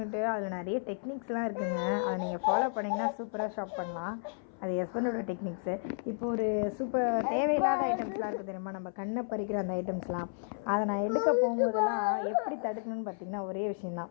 அதில் நிறைய டெக்னிக்ஸ்லாம் இருக்குதுங்க. அதை நீங்கள் ஃபாலோ பண்ணிங்கன்னா சூப்பராக ஷாப் பண்ணலாம். அது ஹஸ்பண்டோட டெக்னிக்ஸு. இப்போ ஒரு தேவையில்லாத ஐட்டம்ஸ்லாம் இருக்குது தெரியுமா, நம்ம கண்ணை பறிக்கிற அந்த ஐட்டம்ஸ்லாம். அதை நான் எடுக்க போகும்போதெல்லாம் எப்படி தடுக்கணும்னு பார்த்திங்கன்னா ஒரே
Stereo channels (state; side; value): silent; right; 56 dB below the other